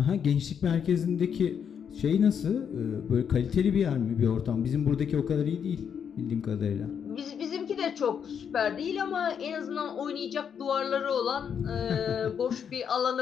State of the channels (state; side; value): quieter; right; 7.6 dB